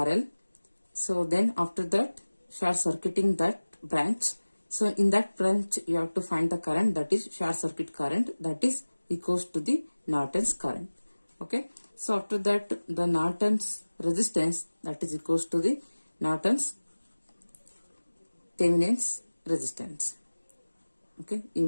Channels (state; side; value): inverted; both; correlation -1.00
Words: So then after that, short circuiting that branch. So in that branch, you have to find the current, that is short circuit current, that is equals to the Norton's current. Okay, so after that, the Norton's resistance, that is equals to the Norton's Thevenin's resistance. Okay, you